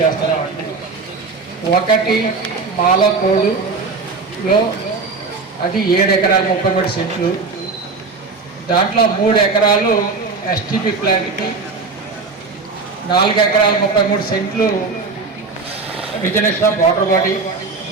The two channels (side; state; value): left; quieter; 4.2 dB